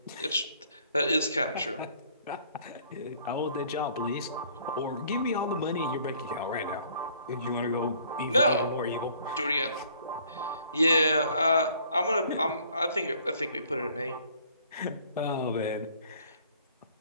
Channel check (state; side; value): inverted; both; correlation -0.59